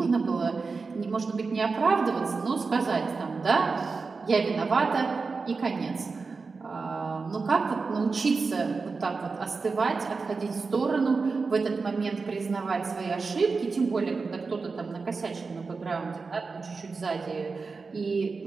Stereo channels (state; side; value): quieter; left; 4.4 dB